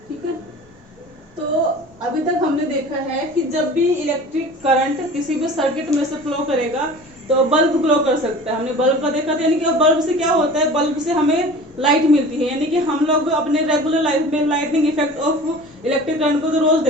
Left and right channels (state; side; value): normal; both; correlation 0.40